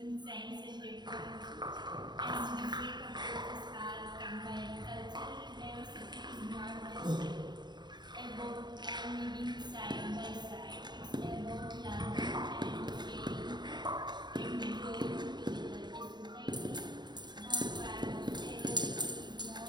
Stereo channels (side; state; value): left; late; 0.21 ms